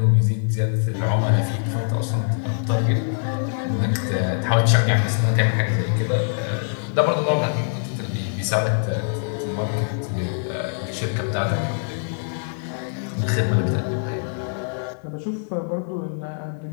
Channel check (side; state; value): right; silent; digital silence